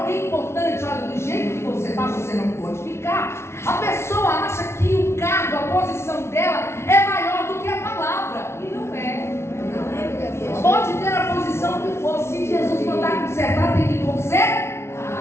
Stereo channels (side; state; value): right; late; 0.13 ms